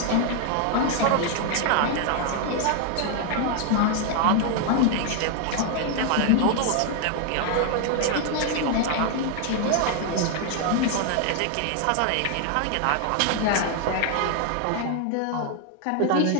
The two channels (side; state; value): both; different; correlation 0.00